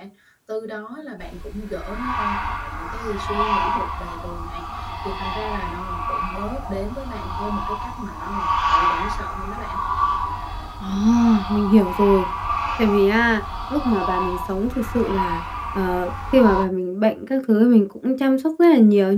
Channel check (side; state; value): both; identical; correlation 1.00